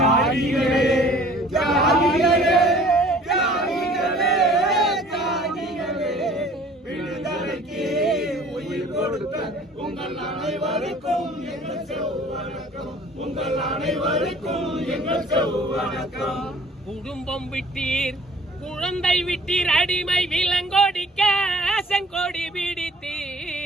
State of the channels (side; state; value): both; normal; correlation 0.51